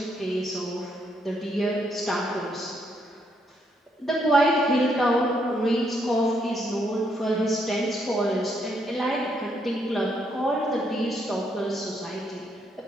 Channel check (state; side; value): normal; both; correlation 0.74